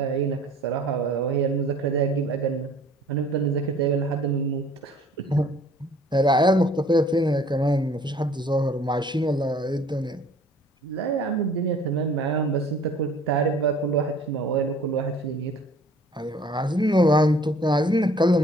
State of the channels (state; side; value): normal; both; correlation 0.53